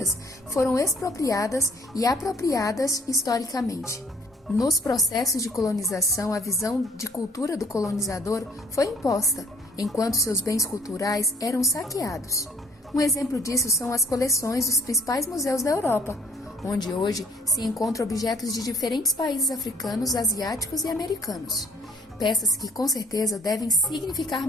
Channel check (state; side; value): normal; both; correlation 0.59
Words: foram expropriadas e apropriadas historicamente. Nos processos de colonização, a visão de cultura do colonizador foi imposta, enquanto seus bens culturais eram saqueados. Um exemplo disso são as coleções dos principais museus da Europa, onde hoje se encontram objetos de diferentes países africanos, asiáticos e americanos. Peças que com certeza devem significar